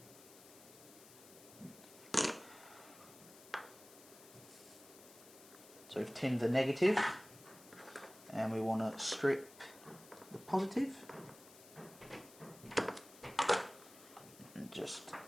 So we've tinned the negative and we want to strip the positive and just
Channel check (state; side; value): noise; left; hiss, 20 dB below the sound